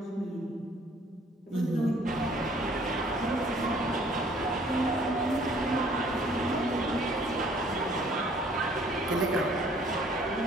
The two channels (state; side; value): normal; both; correlation 0.58